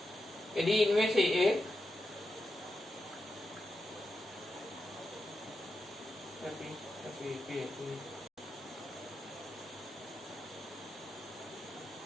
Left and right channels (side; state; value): both; normal; correlation 0.88